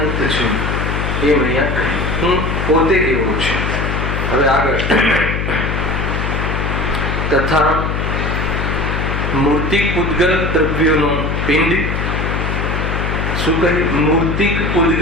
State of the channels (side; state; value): left; noise; hum, 1 dB below the sound